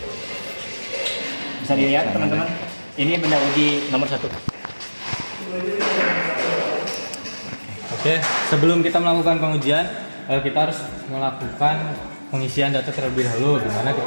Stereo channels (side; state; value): both; inverted; correlation -1.00